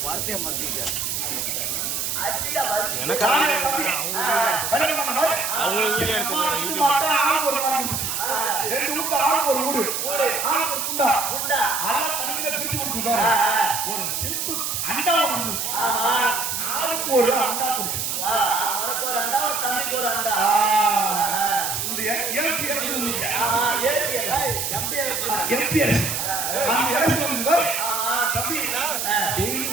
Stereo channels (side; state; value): right; noise; hiss, 1 dB below the sound